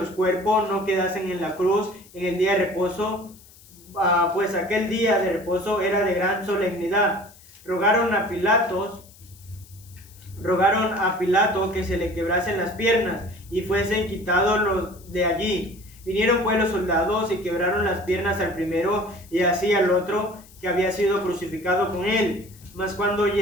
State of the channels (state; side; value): noise; left; hiss, 24 dB below the sound